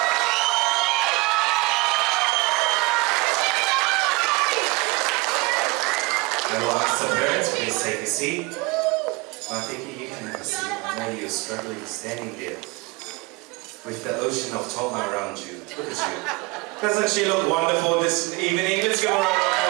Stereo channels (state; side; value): quieter; left; 25.8 dB